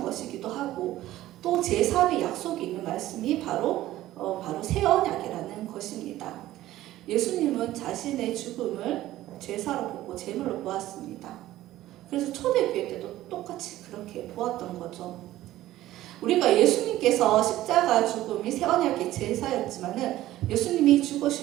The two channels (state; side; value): quieter; left; 15.0 dB